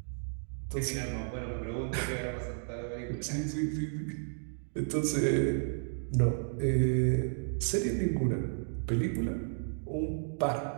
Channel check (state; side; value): silent; left; digital silence